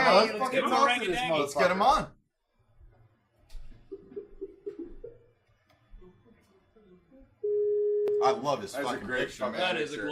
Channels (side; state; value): both; identical; correlation 1.00